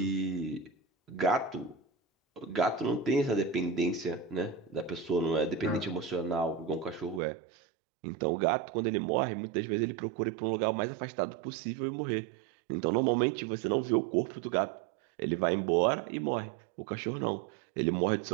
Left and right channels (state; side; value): drops out; left; at 7.2 s